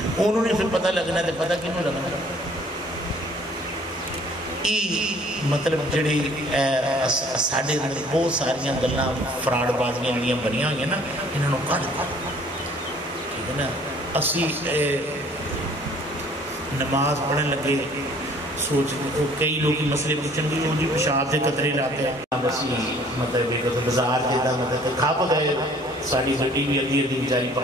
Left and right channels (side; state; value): both; normal; correlation 0.56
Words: انہوں نے پھر پتہ لگنا ہے، پتہ کیوں لگنا مطلب جڑی ساڑھے بہت ساریاں گلنا فراڈ بازیاں جڑیاں بنیاں ہوئی ہیں نا، انہوں نے کھڑ ٹھیک ہے نا۔ اسی نماز پڑھنے لگے سوچ کئی لوگ مسئلے پوچھیں گے وہ جی پیشاب کے قطرے لاتے ہیں، مطلب ایک بازار کے دا مطلب کھپ گئے ساری گڈی بھی ادھی ادھی بیچاری